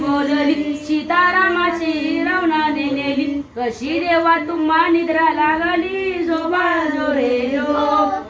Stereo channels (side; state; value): both; identical; correlation 1.00